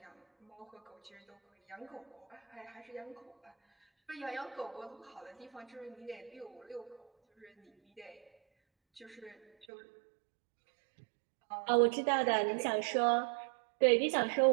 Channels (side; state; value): left; drops out; at 9.7 s